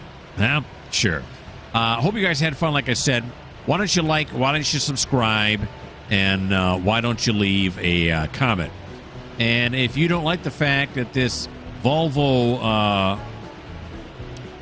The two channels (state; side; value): identical; both; correlation 1.00